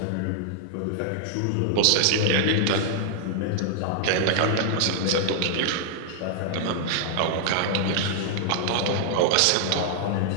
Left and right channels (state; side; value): different; both; correlation -0.01